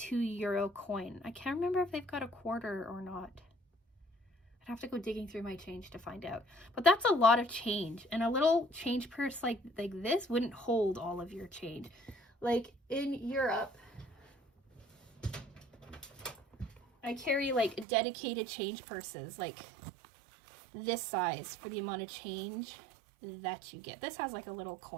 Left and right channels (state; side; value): drops out; left; at 17.9 s